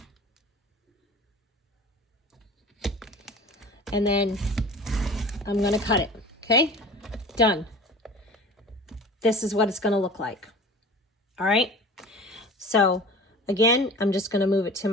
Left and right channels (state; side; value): normal; both; correlation 0.39